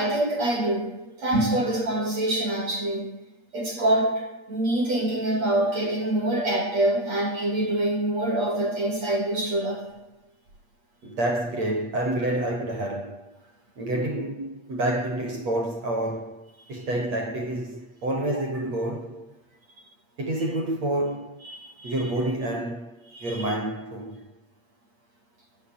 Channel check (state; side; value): late; left; 8.5 ms